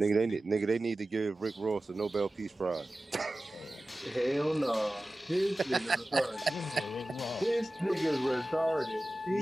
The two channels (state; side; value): normal; both; correlation 0.96